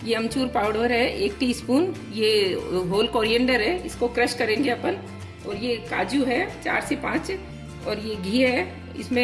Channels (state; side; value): identical; both; correlation 1.00